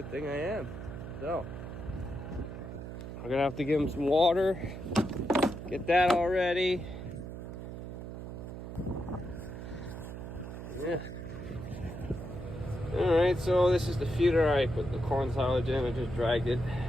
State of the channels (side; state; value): right; noise; hum, 9 dB below the sound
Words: thing I am. So we're gonna have to give him some water, get that all ready. Yeah. All right, so this is the feeder I put the corn silage in. I just dragged it